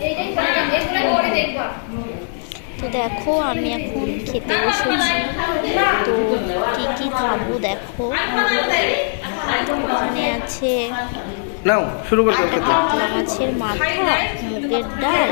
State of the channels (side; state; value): right; silent; digital silence